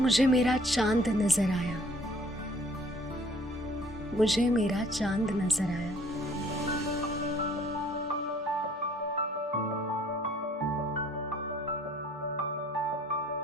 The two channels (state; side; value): normal; both; correlation 0.57